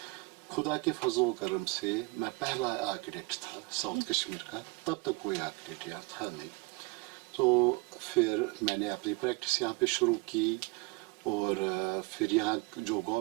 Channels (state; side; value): quieter; left; 26.6 dB